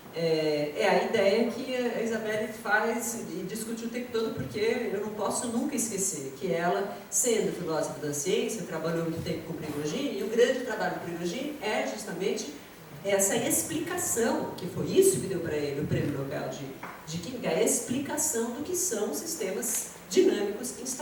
É a ideia que a Isabelle faz e discute o tempo todo, porque eu não posso nunca esquecer que ela, sendo filósofa da ciência, trabalhou muito tempo com Prigogine, e o grande trabalho do Prigogine é justamente essa explicação, que foi isso que deu para ele o prêmio Nobel de Química, a explicação do que são sistemas dinâmicos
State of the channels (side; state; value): both; identical; correlation 1.00